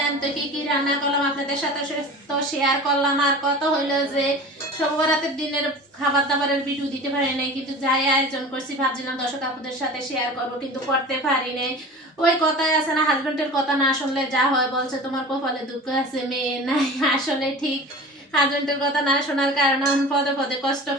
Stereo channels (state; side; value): normal; both; correlation 0.36